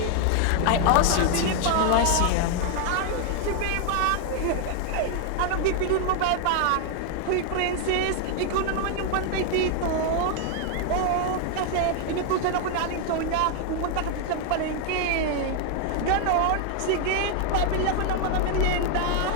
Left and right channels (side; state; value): both; different; correlation 0.00